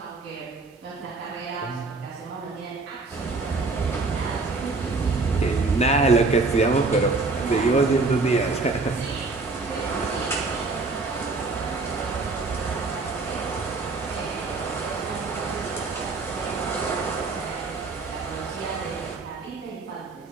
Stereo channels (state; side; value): quieter; left; 3.7 dB